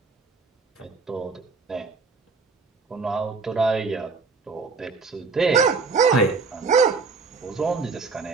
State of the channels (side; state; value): left; quieter; 4.5 dB